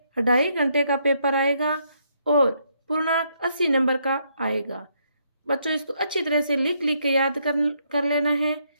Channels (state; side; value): inverted; both; correlation -0.73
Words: 2.5 घंटे का पेपर आएगा और पूर्णांक 80 नंबर का आएगा। बच्चों, इसको अच्छी तरह से लिख के याद कर लेना है।